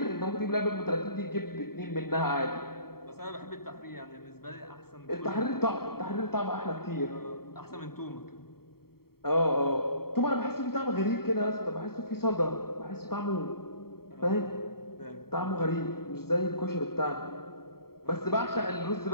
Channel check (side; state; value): right; late; 0.94 ms